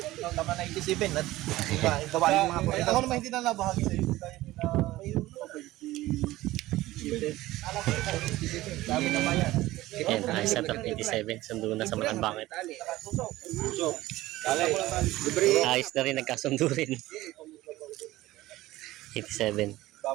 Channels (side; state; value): left; quieter; 17.1 dB